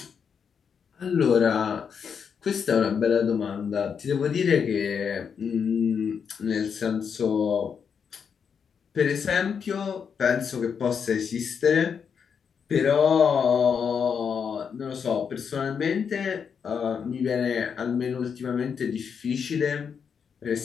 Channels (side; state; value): right; quieter; 6.8 dB